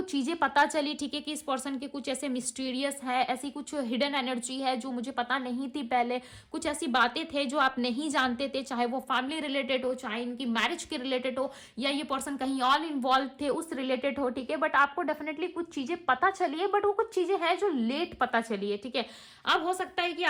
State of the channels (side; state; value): both; identical; correlation 1.00